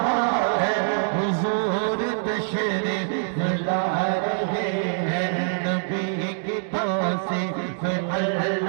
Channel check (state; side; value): silent; left; digital silence